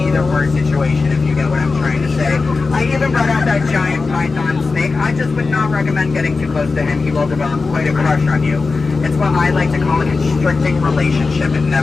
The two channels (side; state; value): right; quieter; 4.1 dB